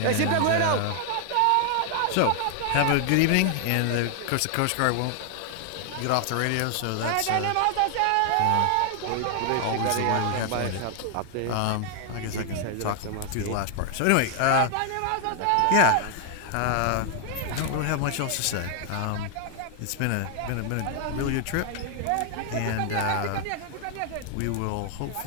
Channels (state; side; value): different; both; correlation 0.00